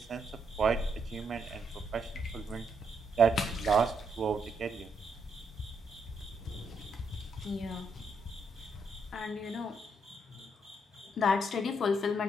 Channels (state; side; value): normal; both; correlation 0.76